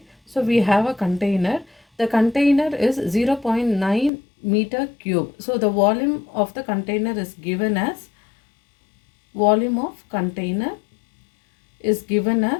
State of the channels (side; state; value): right; drops out; at 4.1 s